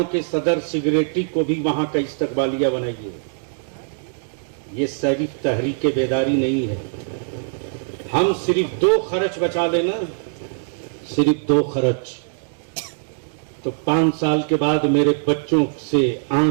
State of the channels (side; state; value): left; silent; digital silence